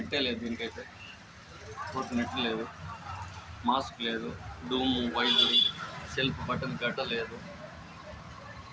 లేదు దీనికైతే. ఫోర్క్ నెట్ లేదు. మాస్క్ లేదు. డూము వైట్ సెల్ఫ్ బటన్ గడ్డ లేదు.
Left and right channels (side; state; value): both; identical; correlation 1.00